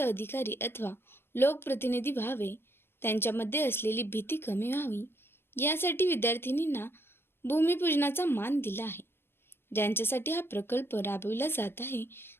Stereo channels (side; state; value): right; late; 0.11 ms